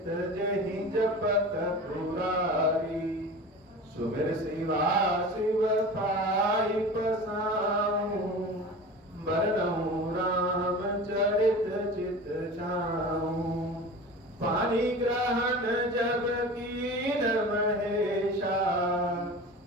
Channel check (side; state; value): both; normal; correlation 0.35